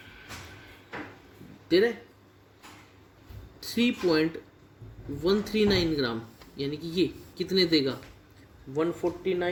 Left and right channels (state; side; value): identical; both; correlation 1.00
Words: दे रहा है। 3.139 ग्राम यानी कि ये कितने देगा,